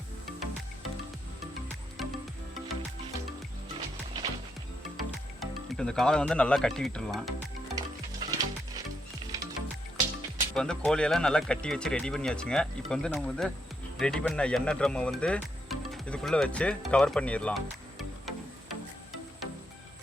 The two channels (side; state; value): both; normal; correlation 0.79